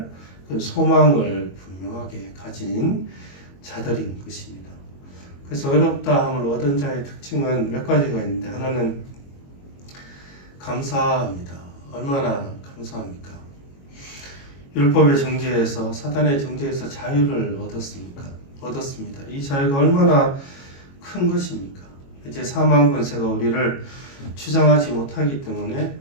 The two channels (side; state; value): right; late; 22 ms